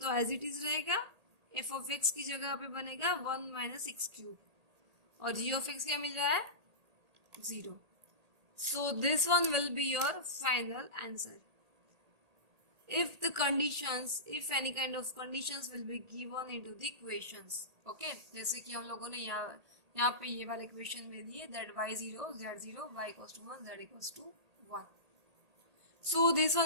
तो एज इट इज रहेगा, f of x की जगह पे बनेगा 1 माइनस एक्स क्यूब, और g of x क्या मिल रहा है, 0. So this one will be your final answer. If the conditions, if any kind of conditions will be given into the equations. Okay, जैसे कि हम लोगों ने यहाँ पे ये वाले इक्वेशन में दिए that y0 z0 y equals to 1 z equals to 1. So this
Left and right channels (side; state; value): left; late; 1.8 ms